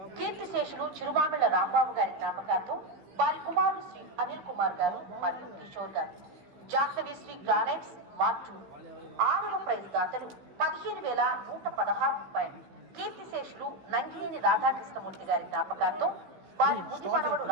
కీర్తిశేషులు చిరుమామిళ్ల రాంబాబు గారి జ్ఞాపకార్థం వారి కుమారులు శ్రీ అనిల్ కుమార్ గారు మరియు కిషోర్ గారు. జాహ్నవి శ్రీ గ్రానైట్స్ మార్చూరు. 6వ ప్రైజ్ దాతలు 15,116 రూపాయలు. కీర్తిశేషులు నంగినేని రాధాకృష్ణమూర్తి గారి జ్ఞాపకార్థం వారి ముది మనవడు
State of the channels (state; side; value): late; left; 15 ms